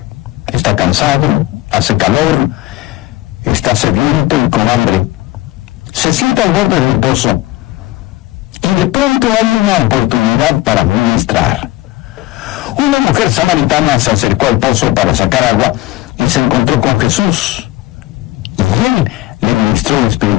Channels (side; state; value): right; quieter; 17.9 dB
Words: Está cansado, hace calor, está sediento y con hambre. Se sienta al borde del pozo, y de pronto hay una oportunidad para ministrar. Una mujer samaritana se acercó al pozo para sacar agua y se encontró con Jesús, y él le ministró